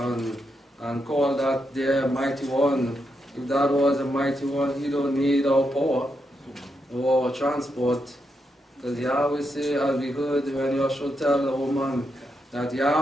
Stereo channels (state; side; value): normal; both; correlation 0.83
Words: call that their mighty one. If that was a mighty one, he don't need our power or our transport. Because Yahweh say, as we heard when Joshua tell the woman, that